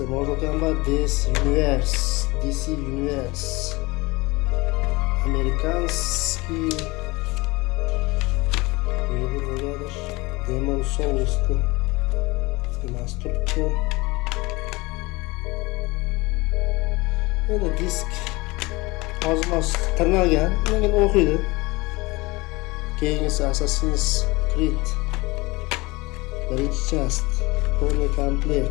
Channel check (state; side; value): quieter; right; 23.1 dB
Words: Mortal Kombat DC Universe. Amerikanskiy negadir Demon Souls'ni emas turibdi. Endi disk ozmoz tirnalgan, lekin o'qiydi. Keyingisi Assassin's Creed birinchi chast Full